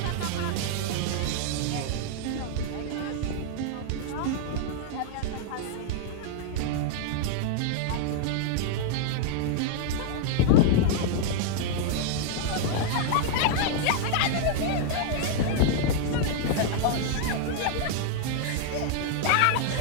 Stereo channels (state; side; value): different; both; correlation -0.01